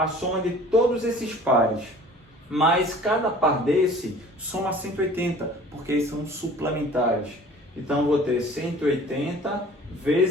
soma de todos esses pares. Mas cada par desse soma 180, porque eles são suplementares. Então eu vou ter 180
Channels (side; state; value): both; normal; correlation 0.47